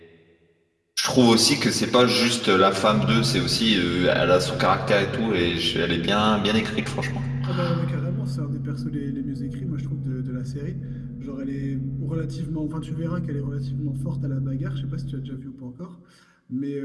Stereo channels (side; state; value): both; identical; correlation 1.00